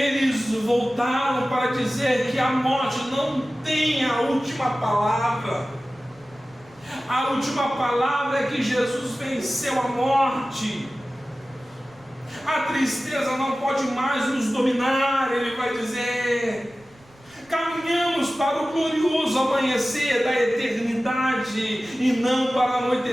voltaram para dizer que a morte não tem a última palavra. A última palavra é que Jesus venceu a morte. A tristeza não pode mais nos dominar. Ele vai dizer: caminhamos para o glorioso amanhecer da eternidade e não para o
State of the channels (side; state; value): right; noise; rumble, 29 dB below the sound